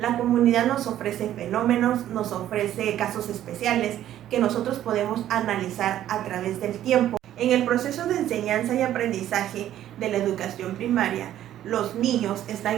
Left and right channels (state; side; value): quieter; left; 12.1 dB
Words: comunidad nos ofrece fenómenos, nos ofrece casos especiales que nosotros podemos analizar a través del tiempo. En el proceso de enseñanza y aprendizaje de la educación primaria, los niños